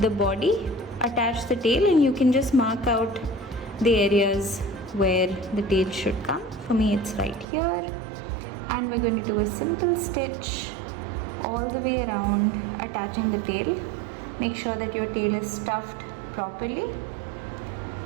body, attach the tail, and you can just mark out the areas where the tail should come. For me it's right here. And we're going to do a simple stitch all the way around, attaching the tail. Make sure that your tail is stuffed properly.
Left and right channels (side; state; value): left; drops out; at 7.5 s